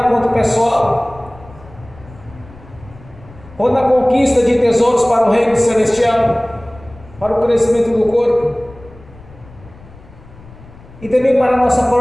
quanto pessoal, quanto na conquista de tesouros para o reino celestial, para o crescimento do corpo, e também para a nossa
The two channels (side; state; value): left; noise; rumble, 21 dB below the sound